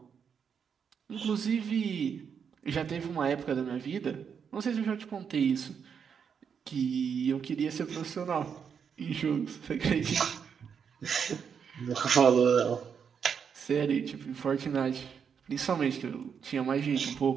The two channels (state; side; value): quieter; left; 7.0 dB